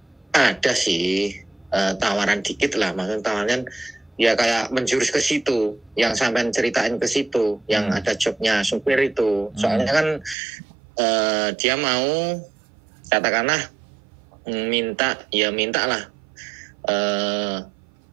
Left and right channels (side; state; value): left; drops out; at 10.4 s